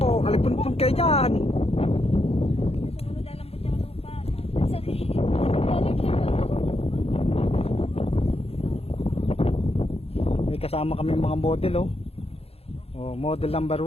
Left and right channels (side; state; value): right; late; 0.29 ms